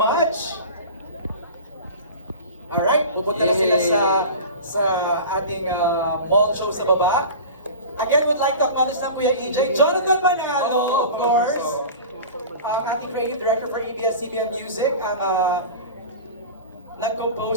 Alright, pupunta na sila sa ating mall show sa baba. Again, would like to acknowledge na Kuya EJ, Jonathan Manalo, of course. Ang ating creative director for ABS-CBN Music, ang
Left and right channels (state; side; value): inverted; both; correlation -0.34